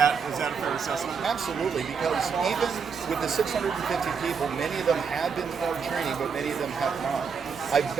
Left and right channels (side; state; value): left; quieter; 6.0 dB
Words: a fair assessment? Absolutely, because even with the 650 people, many of them have been through our training, but many of them have not. I've